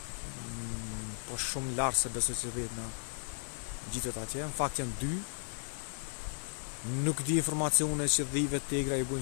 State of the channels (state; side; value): silent; right; 54 dB below the other